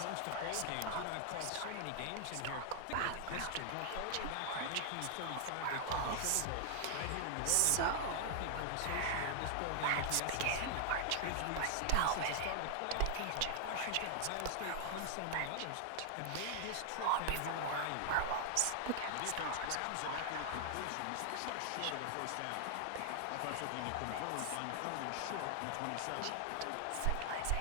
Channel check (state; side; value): different; both; correlation 0.00